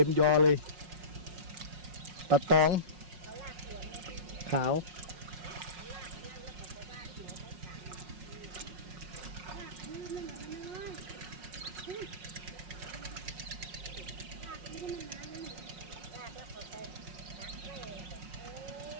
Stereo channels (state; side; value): late; left; 5.5 ms